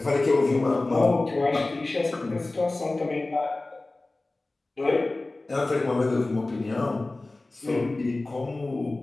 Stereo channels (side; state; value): right; quieter; 3.0 dB